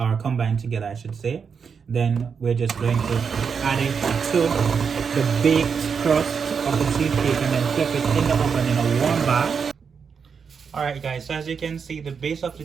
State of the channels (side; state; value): left; quieter; 6.2 dB